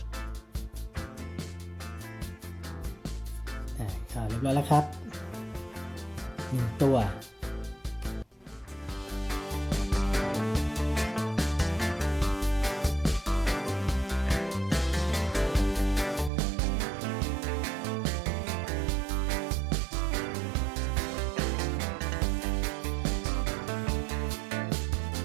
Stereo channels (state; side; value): drops out; left; at 16.3 s